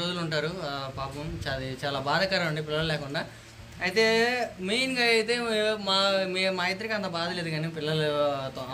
ఉంటారు. పాపం చాలా బాధాకరం అండి పిల్లలు లేకుండా. అయితే మెయిన్గా అయితే మా ఇద్దరికి అంత బాధ లేదు, కానీ పిల్లలతో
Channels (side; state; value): both; identical; correlation 1.00